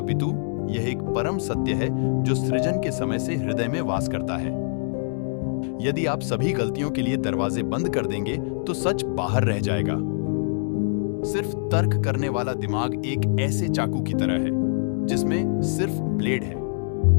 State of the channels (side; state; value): right; silent; digital silence